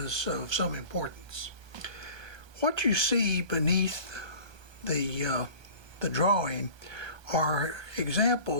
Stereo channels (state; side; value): late; left; 1.3 ms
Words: of some importance. What you see beneath the drawing are